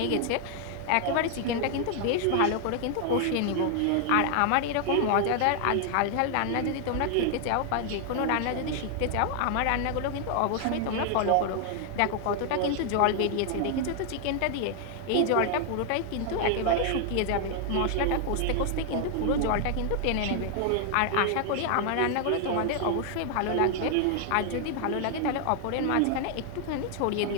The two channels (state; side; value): different; both; correlation 0.00